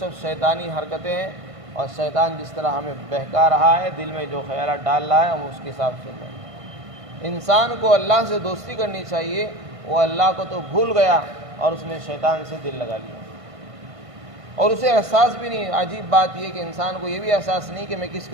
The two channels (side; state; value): left; late; 1.5 ms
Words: شیطانی حرکتیں ہیں، اور شیطان جس طرح ہمیں بہکا رہا ہے، دل میں جو خیالات ڈال رہا ہے ہم اس کے حساب سے چل رہے ہیں۔ انسان کو اللہ سے دوستی کرنی چاہیے، وہ اللہ کو تو بھول گیا اور اس نے شیطان سے دل لگا لیا، اور اسے احساس بھی نہیں۔ عجیب بات یہ کہ انسان کو یہ بھی احساس نہیں کہ میں کس